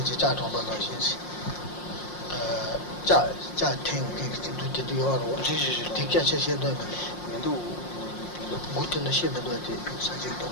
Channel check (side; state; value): right; late; 5.6 ms